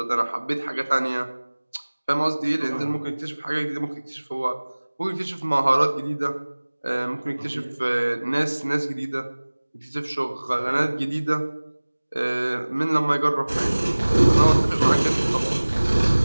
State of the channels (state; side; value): inverted; both; correlation -1.00